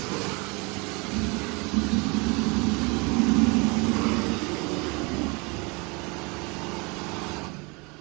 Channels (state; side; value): quieter; left; 28.7 dB